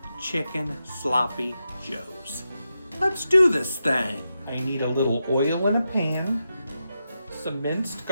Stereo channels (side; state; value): both; inverted; correlation -0.88